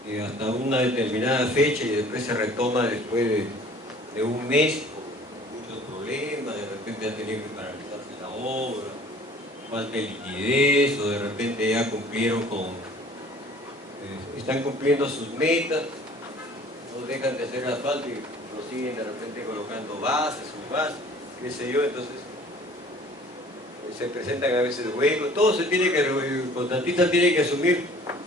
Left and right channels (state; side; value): normal; both; correlation 0.51